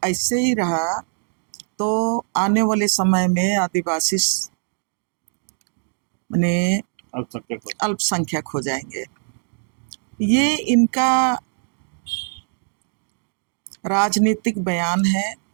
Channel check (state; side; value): silent; left; digital silence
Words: ऐसे ही रहा तो आने वाले समय में आदिवासी माने अल्पसंख्यक हो जाएंगे। ये इनका राजनीतिक बयान है